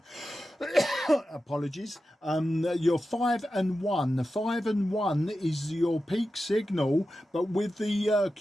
Apologies. You're 5 and 1. 5 and 1 is your peak signal, but with the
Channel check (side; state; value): both; normal; correlation 0.92